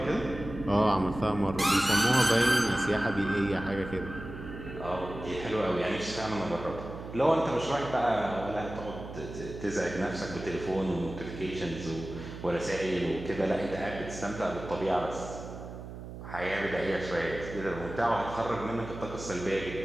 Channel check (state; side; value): noise; right; hum, 11 dB below the sound